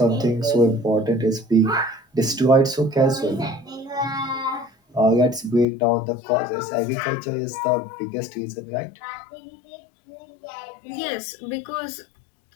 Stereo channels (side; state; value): right; drops out; at 5.7 s